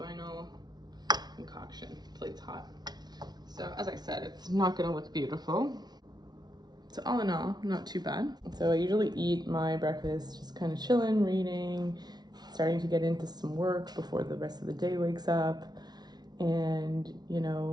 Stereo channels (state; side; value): late; left; 0.19 ms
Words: concoction. Plate's hot. So as I said, it's not gonna look beautiful. So all in all, not too bad. So I usually eat my breakfast just kind of chilling, reading, starting to get into some work before the rest of the day wakes up. And, you